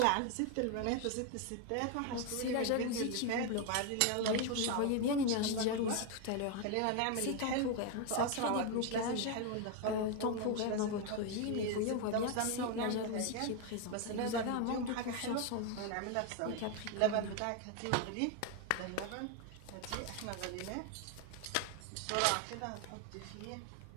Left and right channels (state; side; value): different; both; correlation 0.01